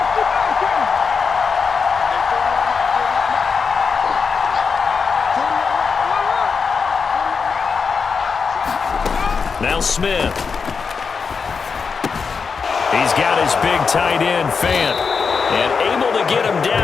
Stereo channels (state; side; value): quieter; right; 5.4 dB